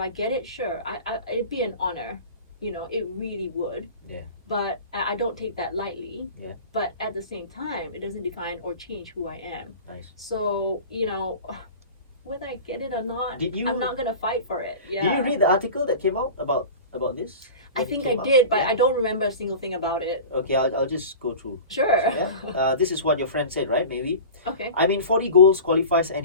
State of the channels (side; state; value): both; inverted; correlation -0.35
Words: get it, sure, it'd be an honor. It really would. Yeah. But I don't take that lightly. Yeah. But at the same time, it doesn't define or change who I am. Nice. So, whether I get it or not, I'm not gonna fight for it. Yeah. Did you read the article that came out about this? I think I did, but I don't remember a single thing about it. Okay, I'll just go through. Sure. So, this is what your friend said, right? Maybe. Okay. 40 goals qualifies